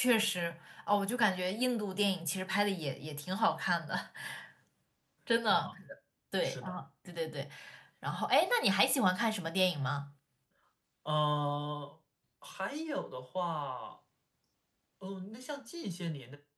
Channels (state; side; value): identical; both; correlation 1.00